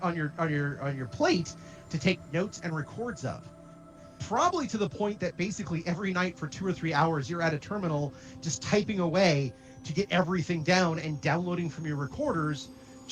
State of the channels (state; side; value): identical; both; correlation 1.00